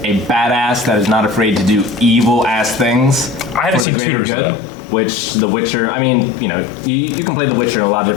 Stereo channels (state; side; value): drops out; right; at 3.9 s